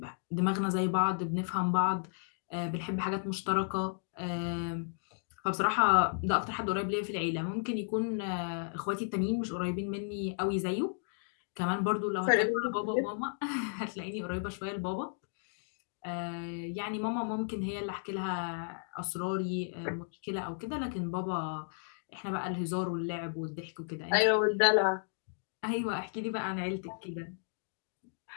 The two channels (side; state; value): right; silent; digital silence